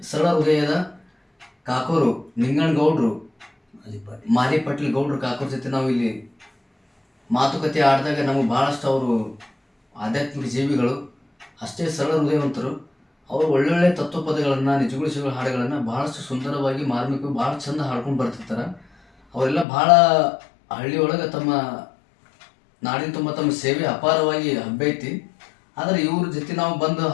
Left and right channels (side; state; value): right; drops out; at 19.7 s